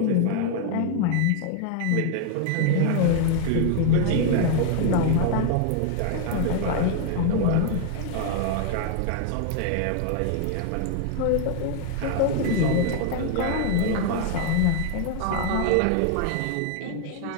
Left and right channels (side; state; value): both; different; correlation 0.00